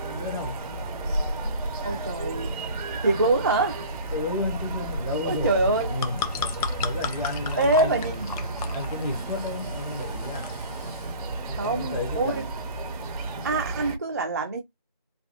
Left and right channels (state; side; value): inverted; both; correlation -0.43